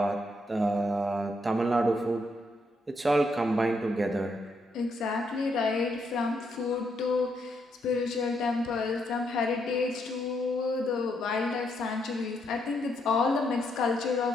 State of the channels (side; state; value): both; normal; correlation 0.77